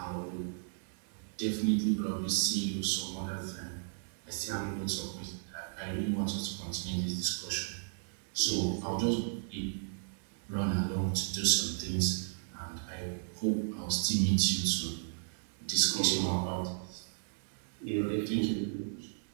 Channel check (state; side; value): silent; left; 55 dB below the other